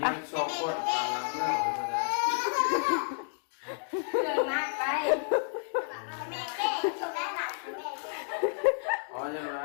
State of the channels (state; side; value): silent; right; digital silence